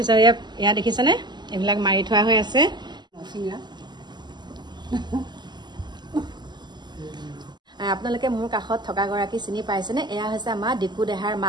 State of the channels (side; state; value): left; late; 0.21 ms